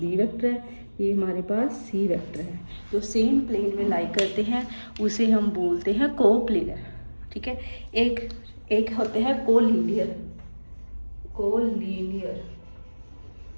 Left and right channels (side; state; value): both; inverted; correlation -1.00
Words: वेक्टर है, ये हमारे पास सी वेक्टर है, जो सेम प्लेन में लाई करते हैं उसे हम बोलते हैं को प्लेनर, ठीक है। एक होते हैं कोलिनियर,